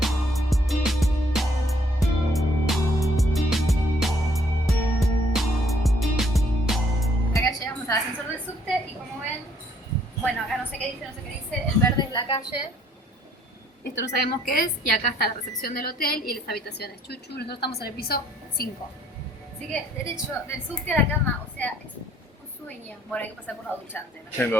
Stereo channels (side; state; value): both; normal; correlation 0.64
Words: Al ascensor del subte y como ven, bueno, acá no sé qué dice, el verde es la calle, esto no sabemos qué es, y acá está la recepción del hotel y las habitaciones. Chuchu, nosotros estamos en el piso 5. Así que derecho del subte a la cama, o sea, es un sueño. Bueno, hay que pasar por la ducha antes, ¿no?